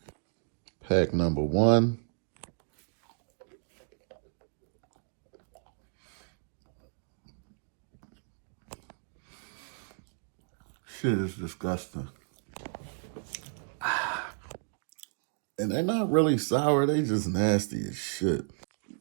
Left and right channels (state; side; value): silent; left; digital silence